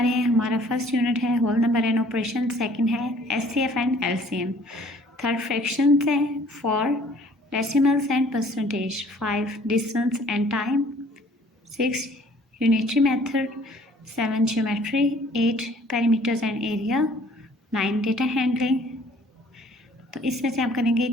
हैं। हमारा फर्स्ट यूनिट है whole number and operation, second है SCF and LCM, third fractions है, 4 decimals and percentage, 5 distance and time, 6 unitary method, 7 geometry, 8 perimeters and area, 9 data handling. तो इसमें से आप करेंगे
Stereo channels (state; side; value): normal; both; correlation 0.56